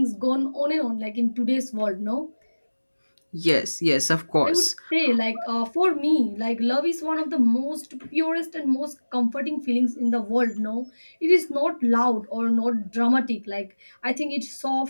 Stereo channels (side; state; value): both; inverted; correlation -1.00